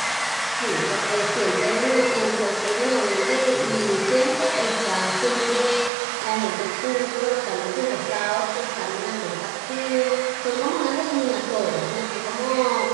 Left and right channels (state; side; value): drops out; left; at 5.9 s